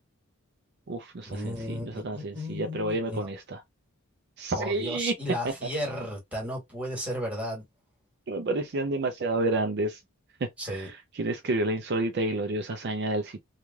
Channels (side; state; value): both; normal; correlation 0.18